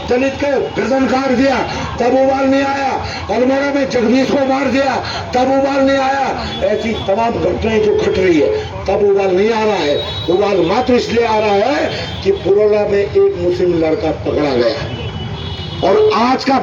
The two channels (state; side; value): identical; both; correlation 1.00